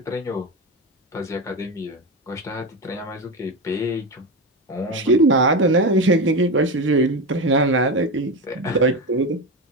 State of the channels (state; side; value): normal; both; correlation 0.18